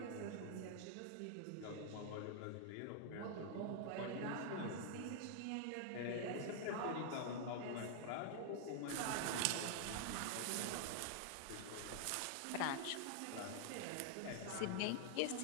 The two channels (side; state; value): both; different; correlation 0.00